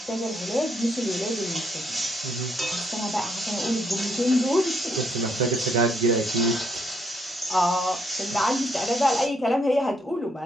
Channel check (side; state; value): both; normal; correlation 0.73